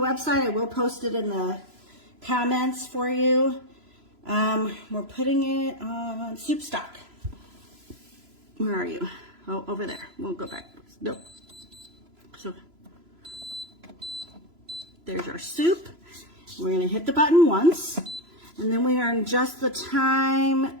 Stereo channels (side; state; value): left; late; 3.0 ms